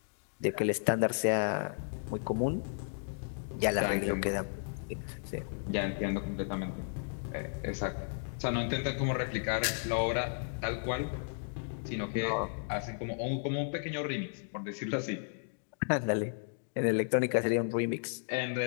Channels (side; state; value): right; silent; digital silence